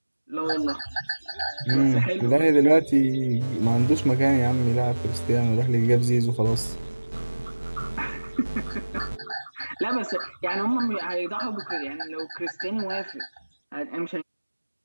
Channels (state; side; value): inverted; both; correlation -1.00